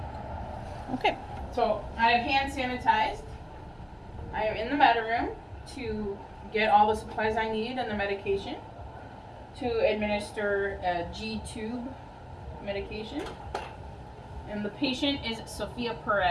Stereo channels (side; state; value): both; identical; correlation 1.00